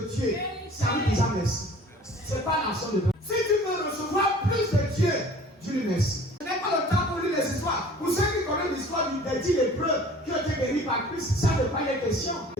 Dieu, c'est à lui déjà merci. Ce n'est pas l'action de Dieu. Si tu veux recevoir plus de Dieu, dis-lui merci. Ce n'est pas le temps pour lire les histoires. Pour ceux qui connaissent l'histoire des 10 lépreux qui ont été guéris par Christ, ça ne pas les questions.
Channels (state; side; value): normal; both; correlation 0.48